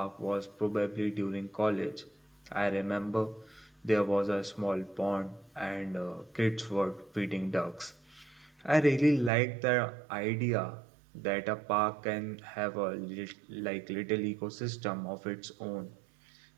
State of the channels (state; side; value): drops out; left; at 9.3 s